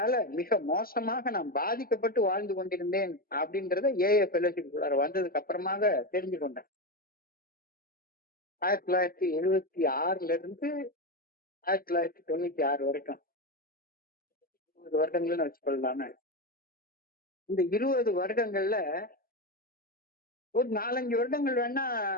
மிக மோசமாக நான் பாதிக்கப்பட்டு வாழ்ந்து கொண்டிருந்தேன் அப்படின்றத ஏஏ ஃபெலோஷிப் வந்ததுக்கு அப்புறமாக தெரிஞ்சு கொண்டேன். 1976 இருந்து 1996 வரைக்கும் 20 வருடங்கள்னு வச்சுக்கொள்ளலாமே. இந்த 20 வருடங்கள்ல ஒரு 4-5 வருடங்கள் வேணா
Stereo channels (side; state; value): right; late; 0.43 ms